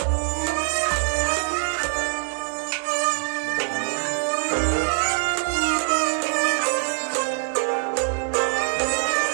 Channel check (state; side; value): silent; left; digital silence